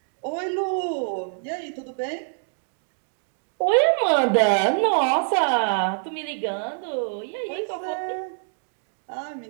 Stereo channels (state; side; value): silent; left; digital silence